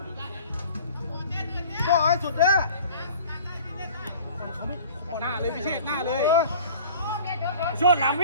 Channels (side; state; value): both; inverted; correlation -0.46